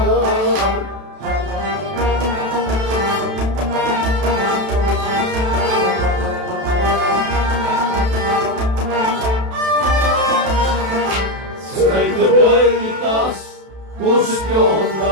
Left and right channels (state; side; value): late; left; 32 ms